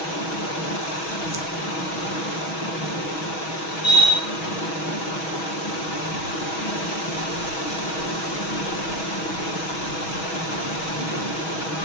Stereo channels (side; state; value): right; late; 6.2 ms